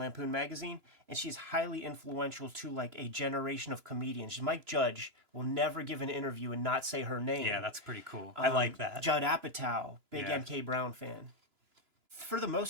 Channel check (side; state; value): left; late; 2.9 ms